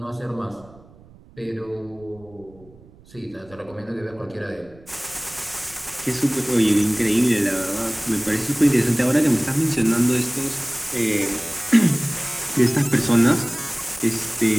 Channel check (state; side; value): noise; right; rumble, 25 dB below the sound